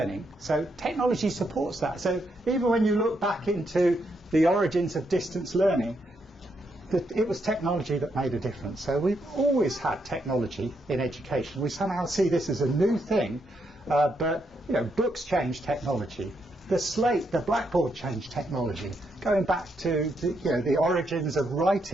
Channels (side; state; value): both; normal; correlation 0.79